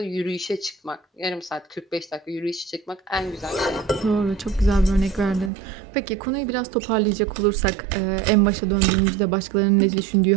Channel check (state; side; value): drops out; left; at 5.5 s